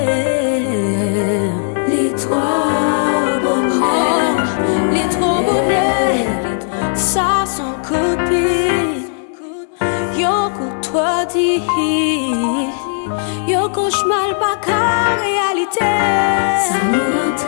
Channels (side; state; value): right; silent; digital silence